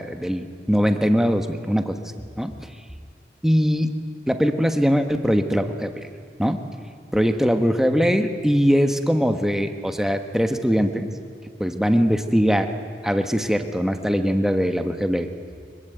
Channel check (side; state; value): both; normal; correlation 0.95